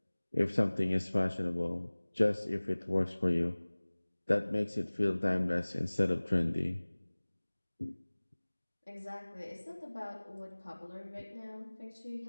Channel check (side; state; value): both; inverted; correlation -1.00